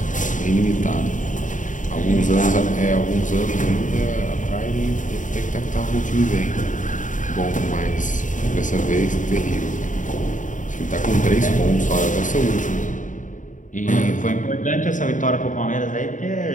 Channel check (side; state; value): right; late; 0.37 ms